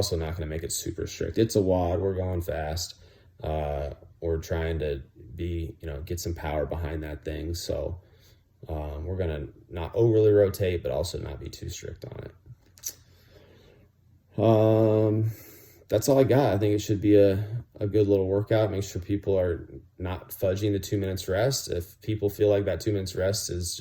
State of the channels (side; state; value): both; identical; correlation 1.00